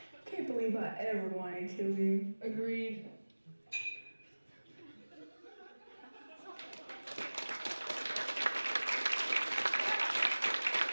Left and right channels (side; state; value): both; inverted; correlation -1.00